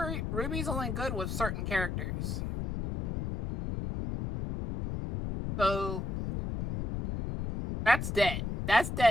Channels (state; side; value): noise; left; rumble, 3 dB below the sound